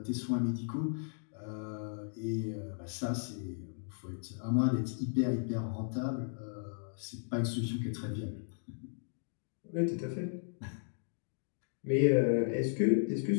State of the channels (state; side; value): silent; right; digital silence